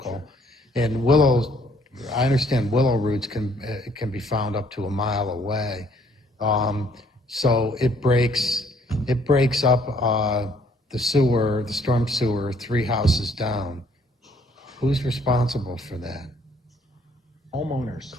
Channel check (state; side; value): normal; both; correlation 0.64